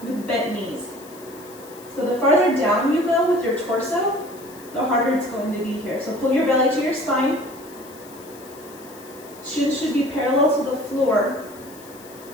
with bent knees. So the farther down you go with your torso, the harder it's going to be here. So pull your belly to your spine. Shins should be parallel to the floor.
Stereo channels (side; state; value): left; noise; hiss, 21 dB below the sound